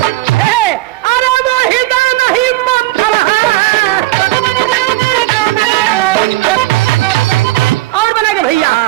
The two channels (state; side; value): quieter; left; 18.0 dB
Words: अरे वो हृदय नहीं पत्थर है। और बना के भैया,